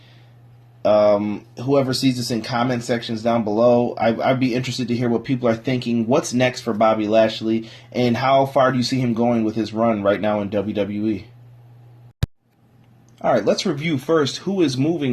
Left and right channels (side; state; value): both; identical; correlation 1.00